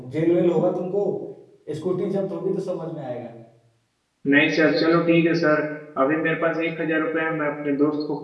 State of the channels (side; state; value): both; identical; correlation 1.00